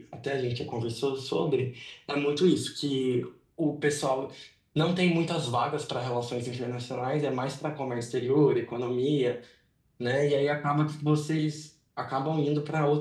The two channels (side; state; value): both; identical; correlation 1.00